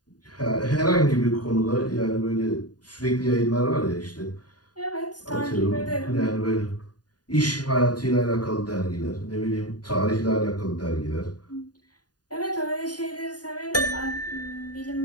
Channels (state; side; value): late; right; 0.69 ms